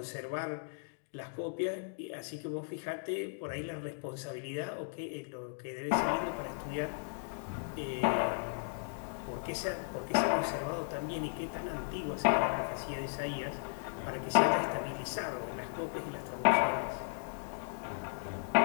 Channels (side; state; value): right; silent; digital silence